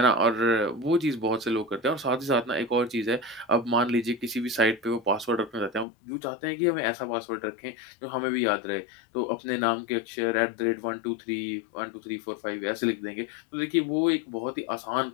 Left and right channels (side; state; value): right; drops out; at 5.9 s